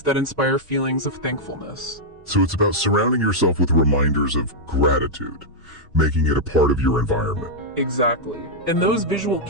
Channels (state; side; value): normal; both; correlation -0.05